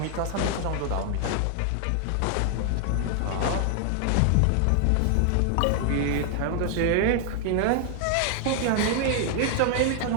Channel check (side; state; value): both; different; correlation 0.00